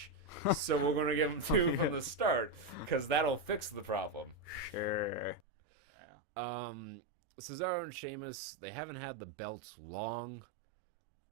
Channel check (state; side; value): drops out; left; at 5.4 s